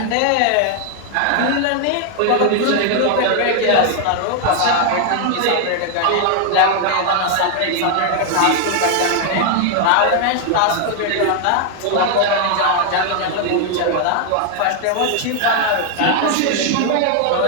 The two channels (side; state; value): both; different; correlation 0.00